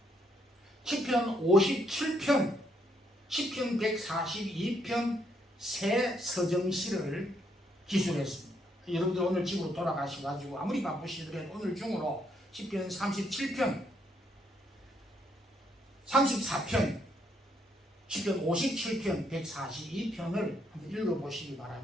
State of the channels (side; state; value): both; normal; correlation 0.73